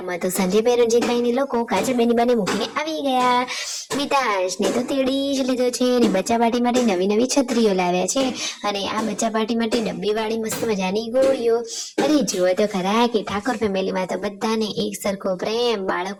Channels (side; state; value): both; identical; correlation 1.00